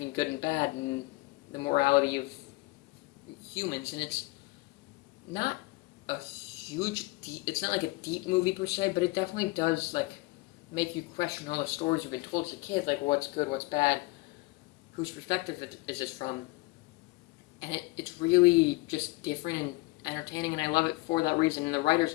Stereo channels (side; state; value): right; quieter; 22.9 dB